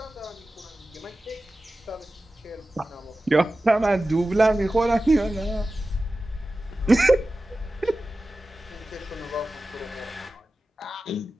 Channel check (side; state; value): both; normal; correlation 0.95